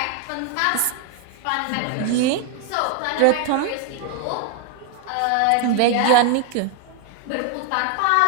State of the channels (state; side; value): different; both; correlation 0.01